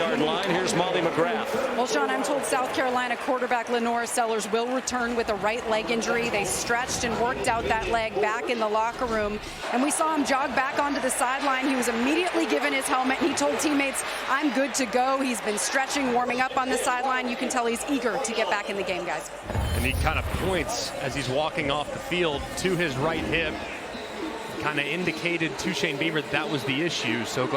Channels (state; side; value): identical; both; correlation 1.00